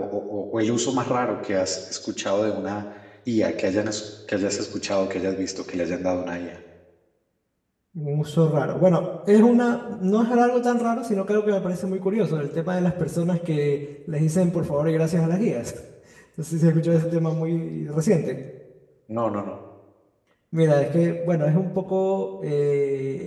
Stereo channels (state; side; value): identical; both; correlation 1.00